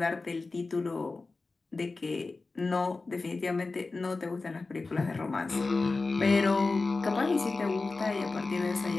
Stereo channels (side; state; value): right; quieter; 3.7 dB